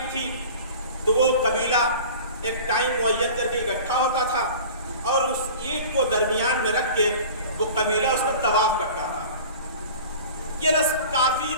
تھی تو وہ قبیلہ ایک ٹائم معین کر کے اکٹھا ہوتا تھا اور اس اینٹ کو درمیان میں رکھ کے وہ قبیلہ اس کا طواف کرتا تھا۔ یہ رسم کافی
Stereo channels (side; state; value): both; inverted; correlation -0.40